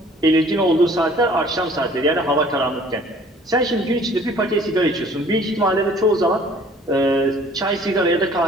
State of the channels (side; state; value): both; normal; correlation 0.53